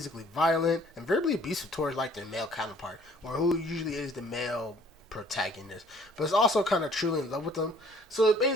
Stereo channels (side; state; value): both; normal; correlation 0.57